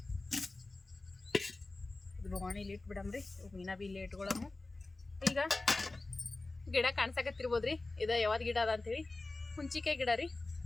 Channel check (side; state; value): right; quieter; 3.2 dB